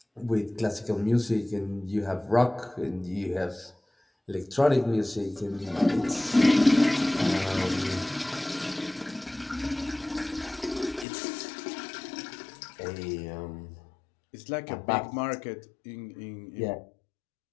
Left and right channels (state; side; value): drops out; right; at 11.1 s